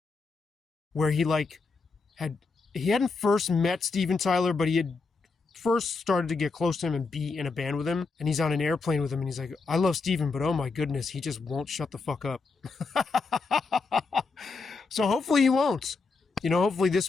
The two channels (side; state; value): right; quieter; 4.2 dB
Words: where he hadn't first met Steven Tyler, but he had first started to get close to him and be in a band with him. And he's on an airplane with him and he's like, I love Steven, but oh my goodness, he just won't shut the fuck up. So hopefully he won't. Hopefully